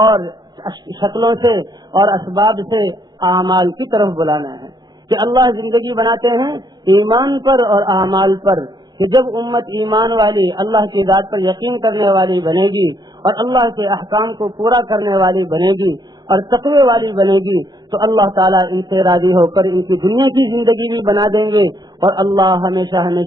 شکلوں سے اور اسباب سے اعمال کی طرف بلانا ہے، کہ اللہ زندگی بناتے ہیں ایمان پر اور اعمال پر، کہ جب امت ایمان والی، اللہ کی ذات پر یقین کرنے والی بنے گی، اور اللہ کے احکام کو پورا کرنے والی بنے گی، اور تقوی والی بنے گی، تو اللہ تعالیٰ ان سے راضی ہو کر ان کی دنیا کی زندگی بھی بنا دیں گے، اور اللہ ہمیشہ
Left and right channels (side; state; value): left; late; 0.20 ms